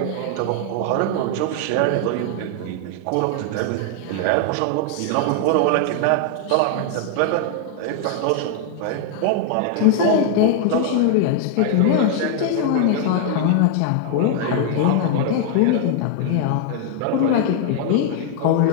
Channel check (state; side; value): different; both; correlation 0.00